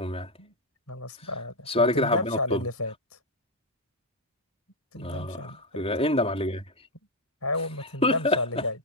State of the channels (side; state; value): both; normal; correlation 0.05